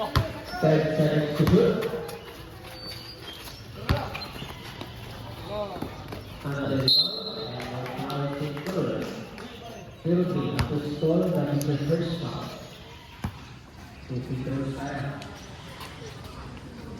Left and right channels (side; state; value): both; identical; correlation 1.00